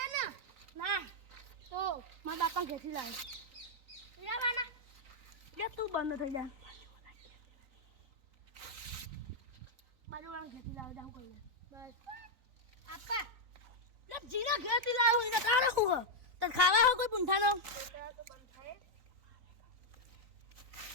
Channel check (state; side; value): late; left; 3.9 ms